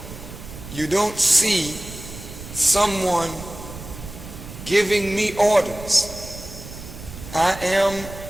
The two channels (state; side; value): noise; right; rumble, 13 dB below the sound